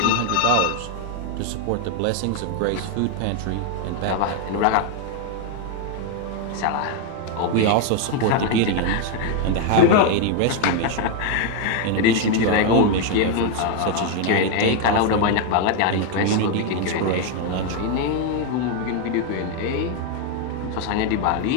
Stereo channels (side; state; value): both; different; correlation 0.01